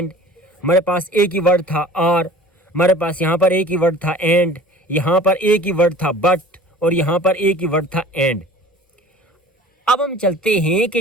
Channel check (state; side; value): normal; both; correlation 0.44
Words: हमारे पास एक ही वर्ड था आर, हमारे पास यहाँ पर एक ही वर्ड था एंड, यहाँ पर एक ही वर्ड था बट और यहाँ पर एक ही वर्ड था एंड। अब हम चलते हैं